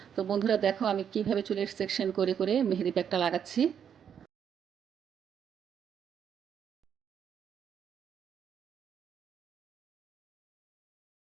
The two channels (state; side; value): quieter; left; 8.2 dB